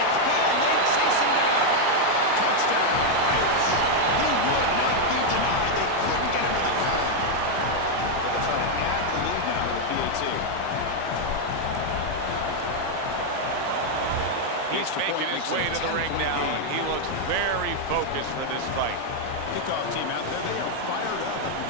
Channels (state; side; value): different; both; correlation 0.01